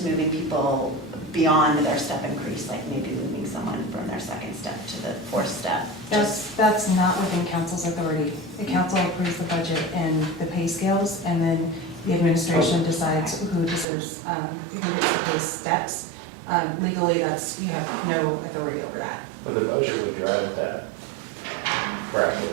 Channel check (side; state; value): left; drops out; at 13.9 s